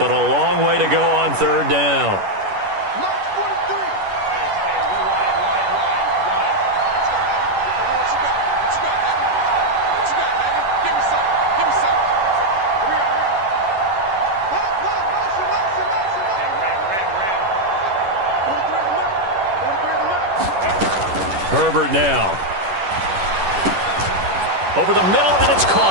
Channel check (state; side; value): late; left; 11 ms